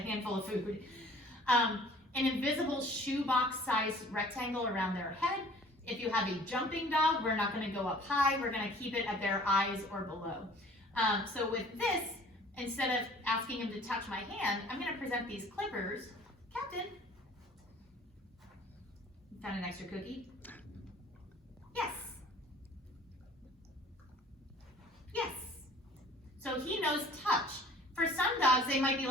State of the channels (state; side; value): normal; both; correlation 0.51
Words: of food. An invisible shoebox-sized rectangle around their head. If you have a jumping dog, we're not going to go up high, we're going to keep it at their eyes or below. So with this, instead of asking him to touch my hand, I'm going to present these clippers. Captain, you found an extra cookie? Yes. Yes. So he knows touch. For some dogs, they might be